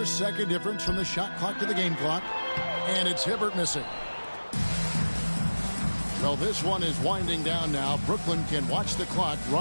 difference from the shot clock to the game clock. And it's Hibbert missing. Well, this one is winding down now. Brooklyn can watch the clock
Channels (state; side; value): inverted; both; correlation -1.00